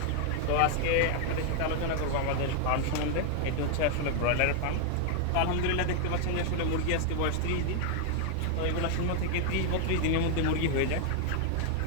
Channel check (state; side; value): different; both; correlation 0.00